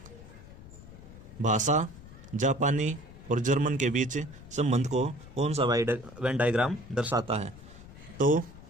भाषा, जापानी और जर्मन के बीच संबंध को कौन सा वेन डायग्राम दर्शाता है। तो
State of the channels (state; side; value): noise; left; rumble, 17 dB below the sound